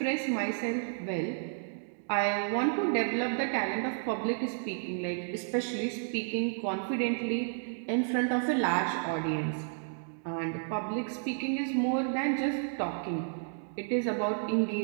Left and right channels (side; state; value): left; silent; digital silence